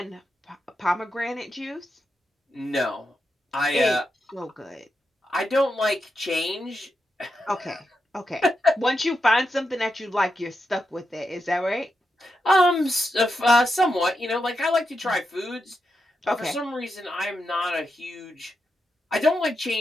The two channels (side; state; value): both; normal; correlation 0.86